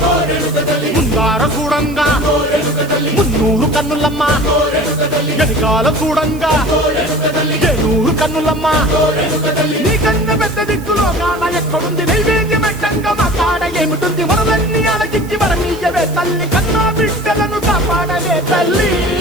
ముందార చూడంగా మున్నూరు కన్నులమ్మా వెనకాల చూడంగా ఏనూరు కన్నులమ్మా నీ కన్న పెద్ద దిక్కులో కాన ఎక్కడుంది నైవేద్యం పెట్టంగా మా కాడ ఏమిటుంది మనలన్నీ అలకించి వరమీయవే తల్లి కన్నా బిడ్డలను కాపాడవే తల్లి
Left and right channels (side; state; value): right; noise; hiss, 20 dB below the sound